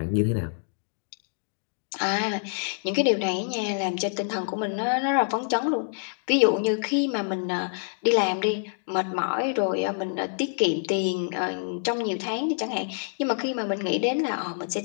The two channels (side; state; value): right; silent; digital silence